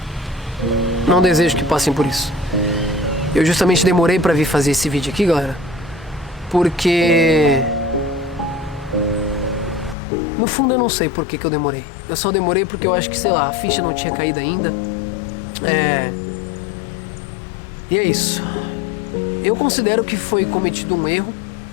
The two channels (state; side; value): drops out; right; at 10.0 s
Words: não desejo que passem por isso. Eu justamente demorei pra vir fazer esse vídeo aqui, galera, porque no fundo eu não sei por que eu demorei. Eu só demorei porque eu acho que, sei lá, a ficha não tinha caído ainda. E é isso. Eu considero que foi cometido um erro,